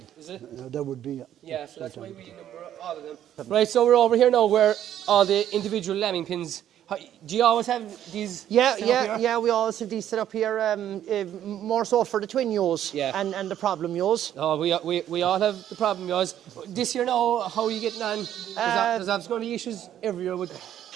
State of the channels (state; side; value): quieter; left; 11.0 dB